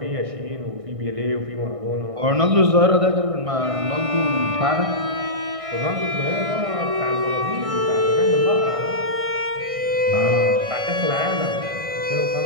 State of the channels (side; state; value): left; late; 1.6 ms